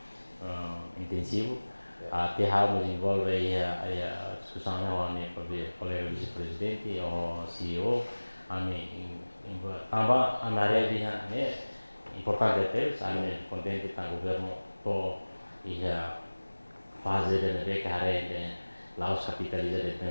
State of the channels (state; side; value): inverted; both; correlation -1.00